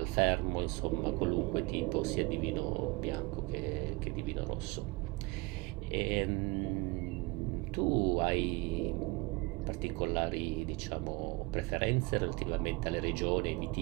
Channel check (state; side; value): quieter; left; 24.4 dB